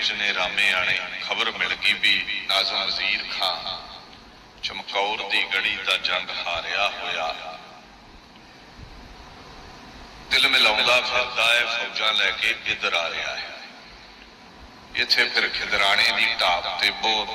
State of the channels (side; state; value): both; identical; correlation 1.00